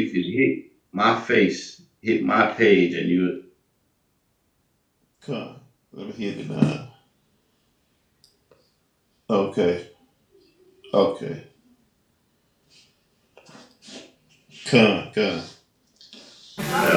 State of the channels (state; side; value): identical; both; correlation 1.00